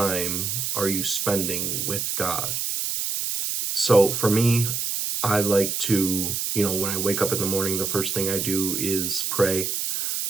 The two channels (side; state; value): right; noise; hiss, 1 dB below the sound